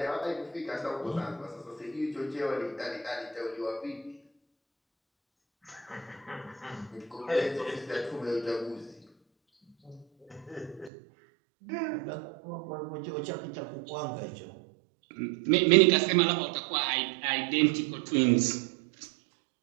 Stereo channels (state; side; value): drops out; left; at 10.9 s